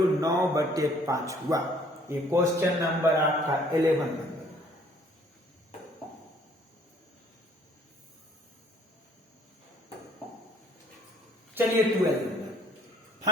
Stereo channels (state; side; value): normal; both; correlation 0.60